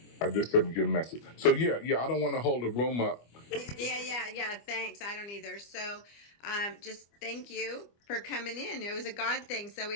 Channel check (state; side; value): late; right; 25 ms